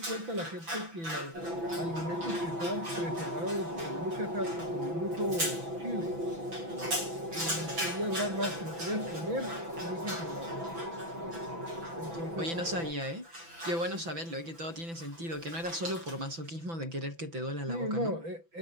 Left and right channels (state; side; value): late; left; 6.0 ms